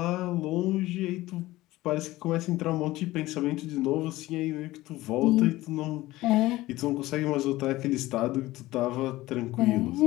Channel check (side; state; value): right; quieter; 17.7 dB